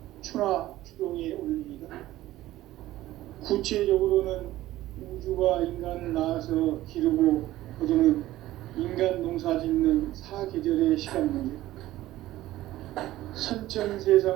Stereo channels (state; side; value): quieter; left; 15.6 dB